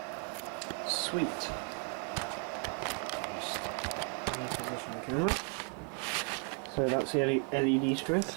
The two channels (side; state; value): left; quieter; 36.0 dB